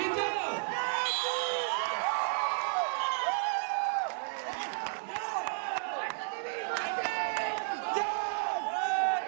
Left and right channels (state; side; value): silent; left; digital silence